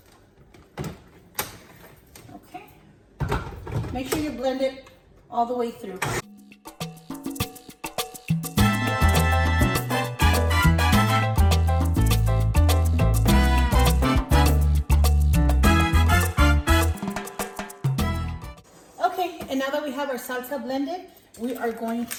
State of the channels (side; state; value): both; identical; correlation 1.00